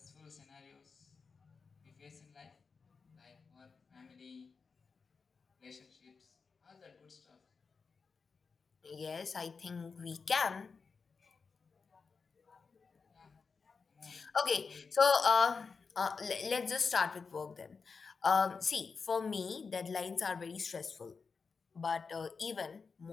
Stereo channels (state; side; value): quieter; right; 5.0 dB